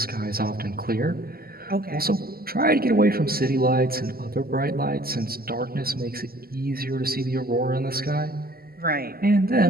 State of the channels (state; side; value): late; left; 0.43 ms